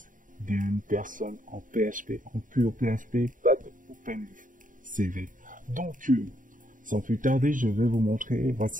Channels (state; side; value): late; left; 0.39 ms